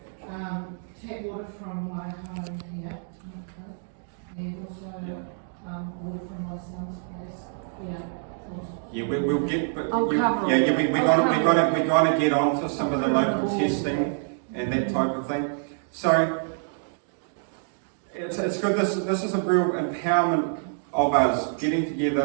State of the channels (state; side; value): silent; left; digital silence